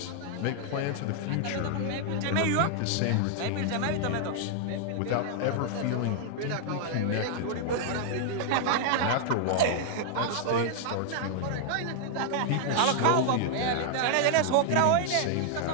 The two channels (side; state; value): both; different; correlation -0.01